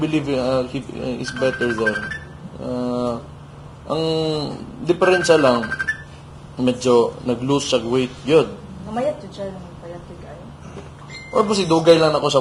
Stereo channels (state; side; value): identical; both; correlation 1.00